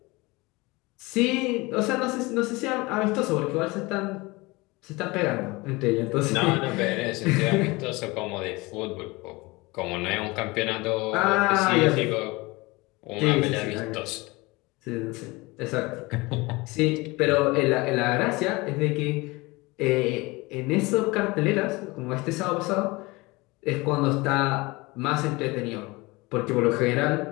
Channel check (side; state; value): right; quieter; 23.4 dB